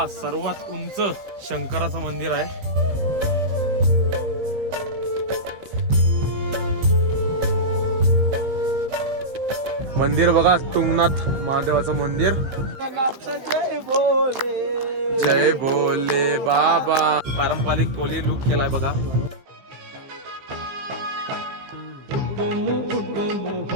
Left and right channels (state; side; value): late; left; 15 ms